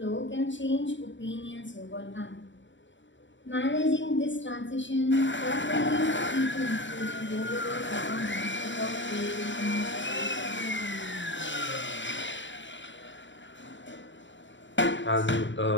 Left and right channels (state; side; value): late; right; 0.54 ms